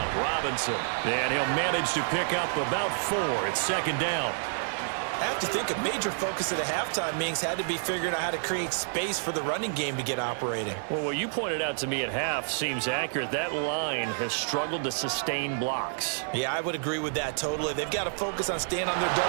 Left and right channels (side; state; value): left; silent; 56 dB below the other